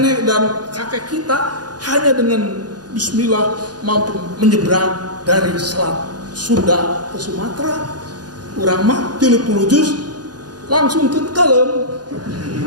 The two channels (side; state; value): left; late; 0.69 ms